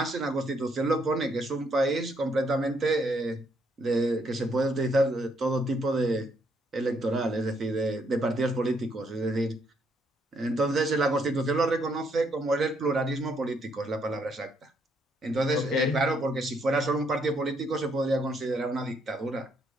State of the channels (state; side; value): normal; both; correlation 0.72